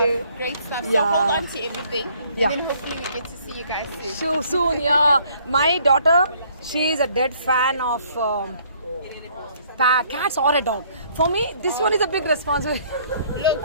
you. Great stuff. So Yeah. hold on to everything. Yeah. And then hopefully we get to see you guys soon. So soon, yeah. My daughter, she is a dead fan of cats or a dog. For me, this one is a big responsibility. Look,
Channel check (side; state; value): both; inverted; correlation -0.62